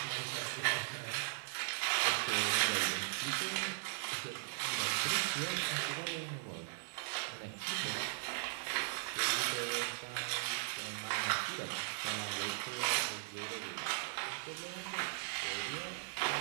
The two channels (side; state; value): left; silent; 52 dB below the other